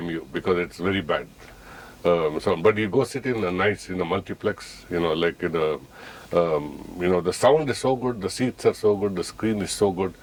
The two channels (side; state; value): both; identical; correlation 1.00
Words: you, because it's very bad. But you go sit in a nice multiplex, like in a the sound is so good, the seats are so good, the screen is so good.